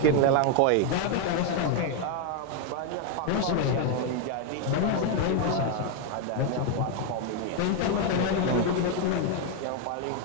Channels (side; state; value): both; different; correlation 0.01